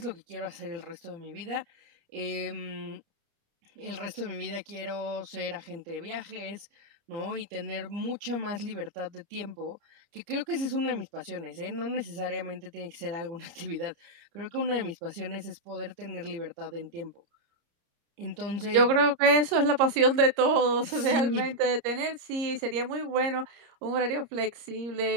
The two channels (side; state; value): left; late; 30 ms